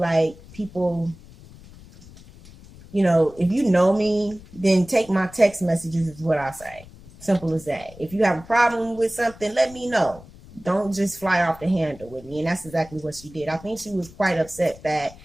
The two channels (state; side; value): noise; left; rumble, 20 dB below the sound